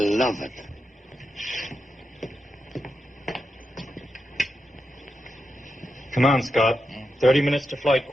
it. Come on, Scott. 30 minutes to flight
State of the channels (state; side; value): normal; both; correlation 0.87